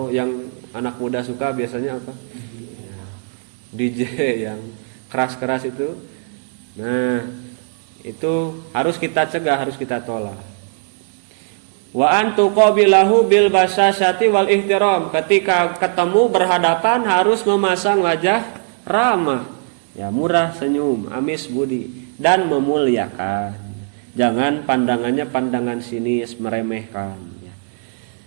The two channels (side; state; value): left; silent; 62 dB below the other